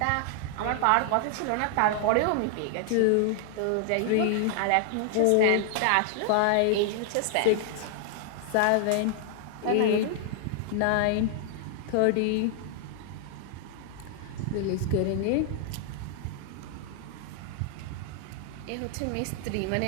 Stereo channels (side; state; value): both; different; correlation 0.00